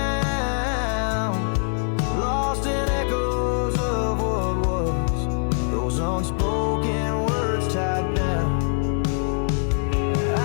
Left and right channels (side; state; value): right; silent; 61 dB below the other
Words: lost in echoes of what was, those unspoken words tied down.